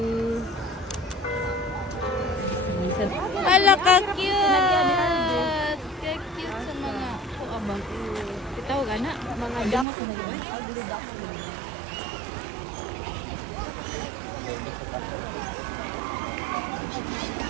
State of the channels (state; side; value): drops out; left; at 9.9 s